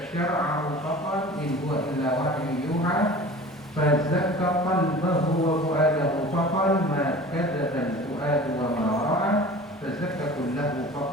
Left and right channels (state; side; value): normal; both; correlation 0.40